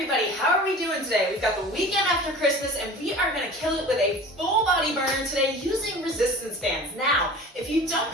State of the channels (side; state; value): both; normal; correlation 0.40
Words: how are we doing today? We've got the weekend after Christmas, and we are going to kill it with a full body burner today using resistance bands. Now, if you don't